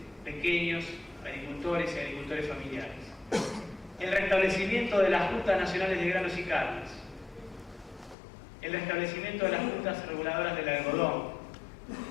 pequeños agricultores y agricultores familiares. El restablecimiento de las juntas nacionales de granos y carnes. El restablecimiento de las juntas reguladoras del algodón.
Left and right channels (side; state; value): right; drops out; at 8.2 s